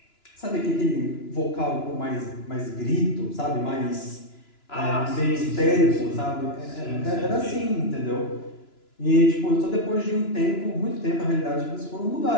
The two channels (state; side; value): late; right; 2.9 ms